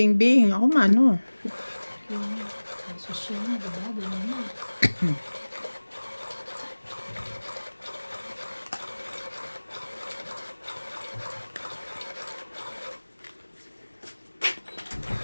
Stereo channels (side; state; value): both; inverted; correlation -1.00